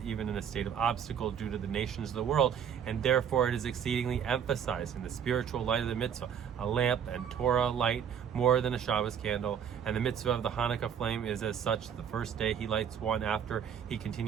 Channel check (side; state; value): left; quieter; 8.2 dB